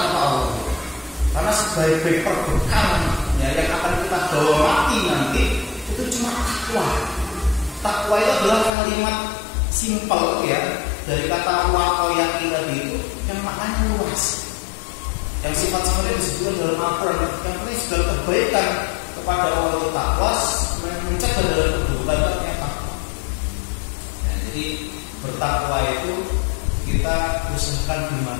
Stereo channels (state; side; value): drops out; right; at 8.7 s